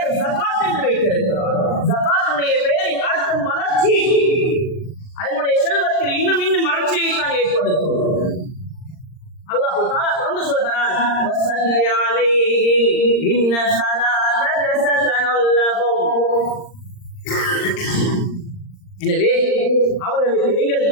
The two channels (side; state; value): right; late; 39 ms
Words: ஜகாத் என்று வைத்திருக்கிறார். ஜகாத்துடைய பெயரின் அர்த்தம் வளர்ச்சி. அதனுடைய செல்வத்தில் இன்னும் இன்னும் வளர்ச்சியை தான் ஏற்படுத்தும். அல்லாஹ் தஆலா தொடர்ந்து சொல்கிறான், வஸல்லி அலைஹிம் இன்ன ஸலாத்தக ஸகனுல் லஹும். எனவே அவர்களுக்கு நீங்கள்